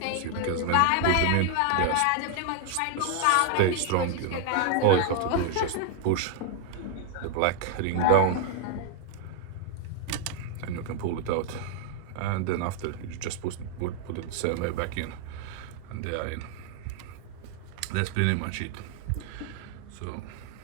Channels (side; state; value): both; different; correlation 0.00